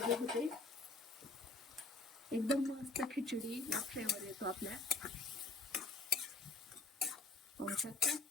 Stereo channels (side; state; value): right; quieter; 3.2 dB